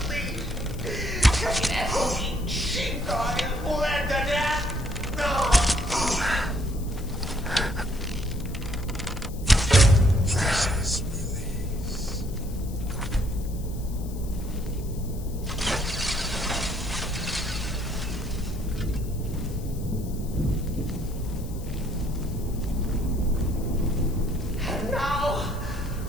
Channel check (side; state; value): left; noise; hiss, 19 dB below the sound